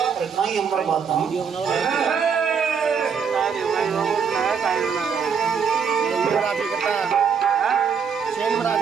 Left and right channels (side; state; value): left; quieter; 6.5 dB